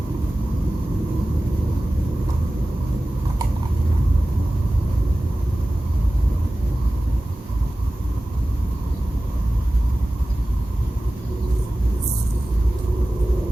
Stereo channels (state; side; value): normal; both; correlation 0.96